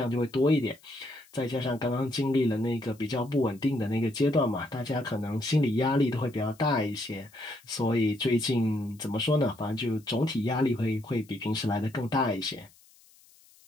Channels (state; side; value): noise; left; hiss, 28 dB below the sound